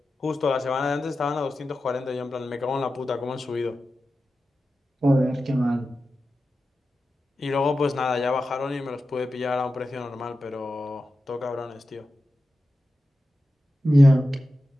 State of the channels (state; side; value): normal; both; correlation 0.92